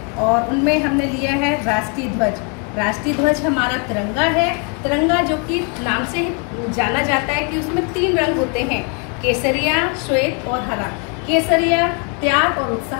और उनमें हमने लिया है राष्ट्रीय ध्वज। राष्ट्रीय ध्वज हमारा तिरंगा है। तिरंगा जो कि नाम से ही जाना जाता है कि उसमें 3 रंग होते हैं, केसरिया, श्वेत और हरा। केसरिया त्याग और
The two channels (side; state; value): right; quieter; 36.3 dB